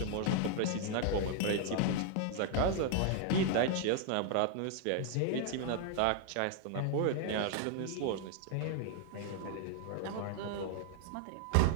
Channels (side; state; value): both; different; correlation 0.00